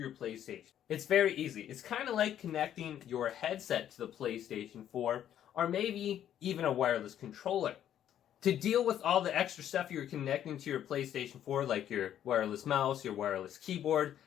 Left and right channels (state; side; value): quieter; right; 10.6 dB